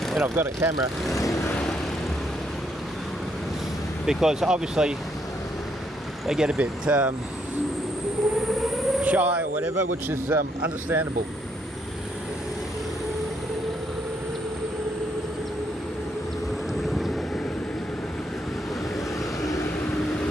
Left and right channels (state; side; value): normal; both; correlation 0.73